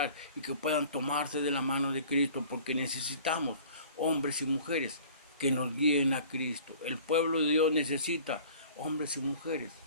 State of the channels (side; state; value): both; inverted; correlation -0.47